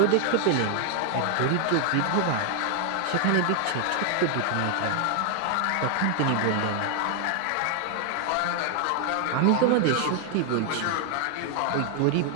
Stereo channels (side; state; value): both; different; correlation 0.00